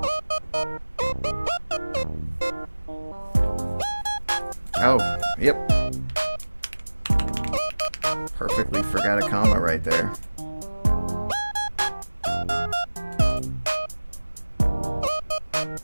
Oh, yep. Perfectly forgot a comma right there.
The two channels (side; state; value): both; inverted; correlation -1.00